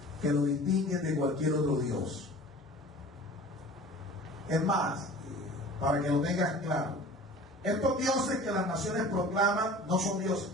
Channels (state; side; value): normal; both; correlation 0.42